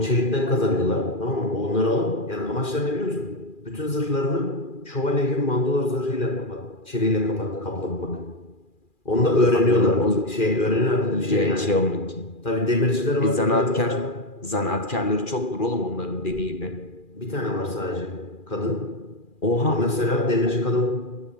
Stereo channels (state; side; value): late; right; 2.4 ms